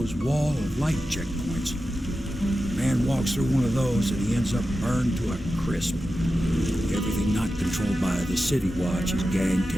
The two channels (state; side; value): normal; both; correlation 0.92